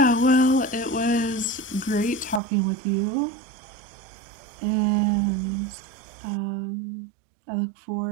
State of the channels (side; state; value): left; drops out; at 2.4 s